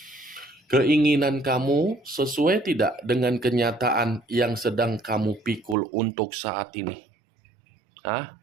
Keinginan kamu sesuai tidak dengan kenyataan yang sedang kamu pikul untuk saat ini?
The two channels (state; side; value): drops out; left; at 5.8 s